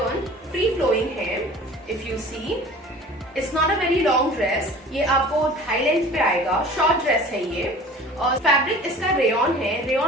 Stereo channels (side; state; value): both; normal; correlation 0.43